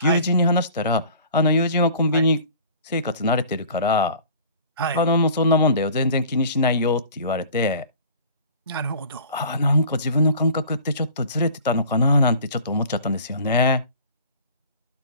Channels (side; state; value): both; inverted; correlation -0.46